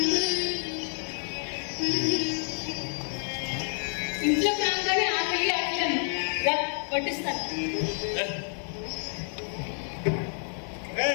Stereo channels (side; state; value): right; silent; 57 dB below the other